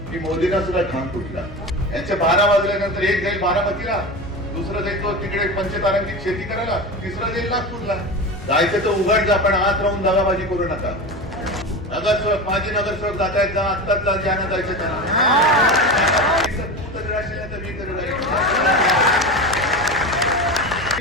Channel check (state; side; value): normal; both; correlation 0.26